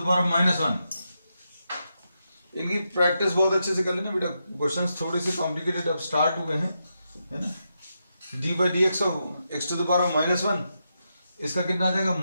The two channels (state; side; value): inverted; both; correlation -0.85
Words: power of -1। इनकी प्रैक्टिस बहुत अच्छे से कर लेना बेटा, क्वेश्चंस थोड़े से कॉम्प्लिकेटेड अब स्टार्ट हुए हैं, है ना। D by d x of x to the power of -1, इसका कितना आ जाएगा